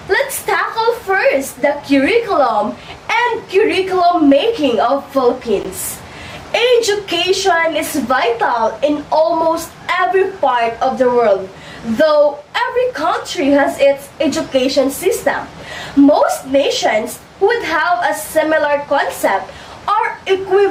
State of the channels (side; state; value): both; identical; correlation 1.00